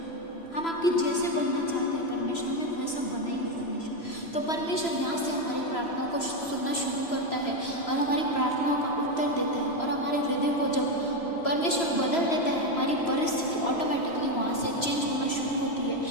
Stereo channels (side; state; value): right; late; 3.0 ms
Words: हम आपके जैसे बनना चाहते हैं परमेश्वर, हमें वैसा बनाइए परमेश्वर। तो परमेश्वर यहाँ से हमारी प्रार्थनाओं को सुनना शुरू करता है और हमारी प्रार्थनाओं का उत्तर देता है। और हमारे हृदय को जब परमेश्वर बदल देता है, हमारी परिस्थिति ऑटोमेटिकली वहाँ से चेंज होना शुरू होती है।